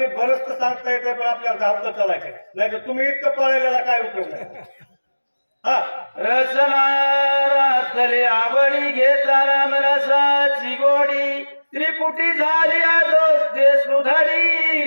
बरंच सांगता येतं पण आपल्याला धावतं चालायचं नाही तर तुम्ही इतकं पळलेला काय उपयोग नाही हा रसना रातली आवडी घेता राम रसाची गोडी त्रिपुटी झाली दोष दे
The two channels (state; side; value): inverted; both; correlation -1.00